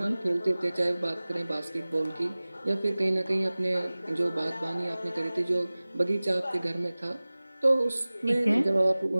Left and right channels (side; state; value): both; inverted; correlation -0.99